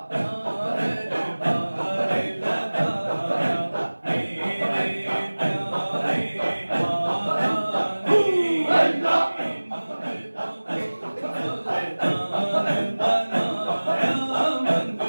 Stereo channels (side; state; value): both; inverted; correlation -1.00